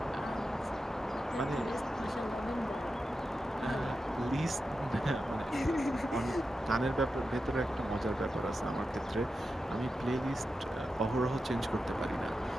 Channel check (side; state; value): both; normal; correlation 0.90